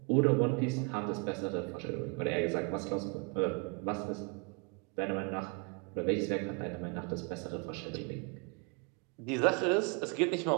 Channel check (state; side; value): quieter; left; 33.7 dB